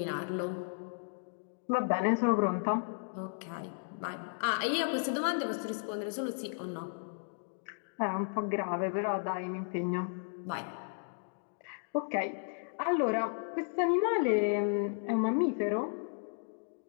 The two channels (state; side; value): silent; right; digital silence